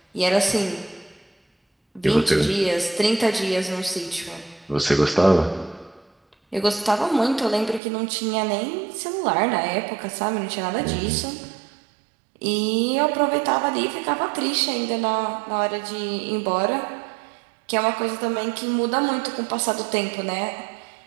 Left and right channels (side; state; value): left; drops out; at 7.8 s